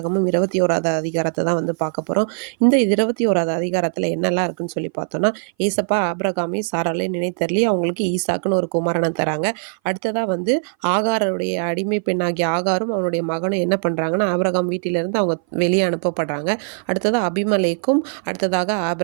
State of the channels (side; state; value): left; silent; 60 dB below the other